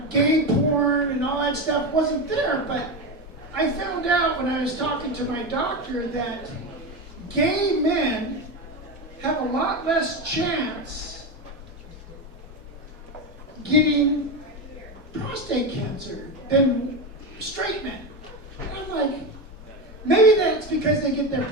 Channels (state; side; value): normal; both; correlation 0.17